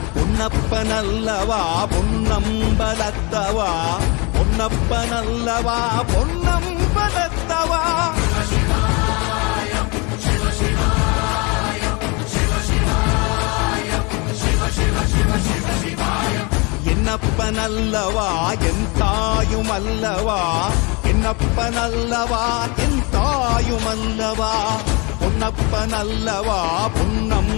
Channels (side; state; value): right; quieter; 28.9 dB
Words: பொன்னப்பனல்லவா பொன்னம்பலத்தவா, பொன்னப்பனல்லவா பொன்னம்பலத்தவா. என்னப்பனல்லவா என் தாயுமல்லவா, என்னப்பனல்லவா என் தாயுமல்லவா, பொன்னப்பனல்லவா